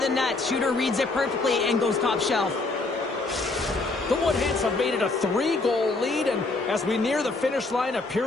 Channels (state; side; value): quieter; right; 3.4 dB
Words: the net. Shooter reads it perfectly and goes top shelf. The Woodhens have made it a 3-goal lead, and as we near the finish line of